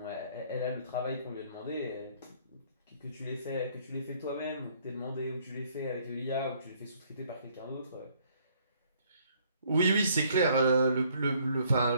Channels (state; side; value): inverted; both; correlation -0.63